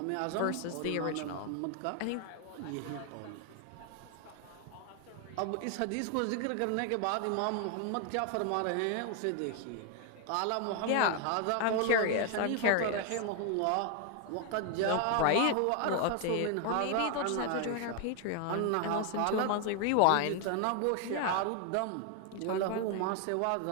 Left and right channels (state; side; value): different; both; correlation 0.00